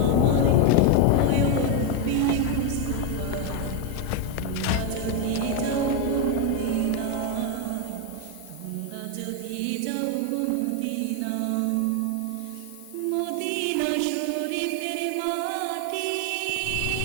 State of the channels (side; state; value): both; different; correlation 0.02